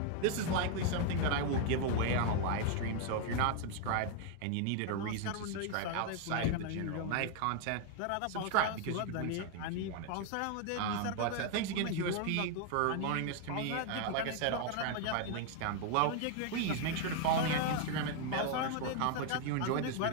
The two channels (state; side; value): different; both; correlation 0.00